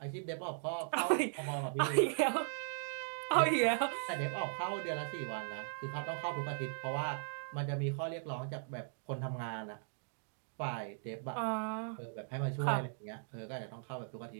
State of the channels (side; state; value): left; silent; digital silence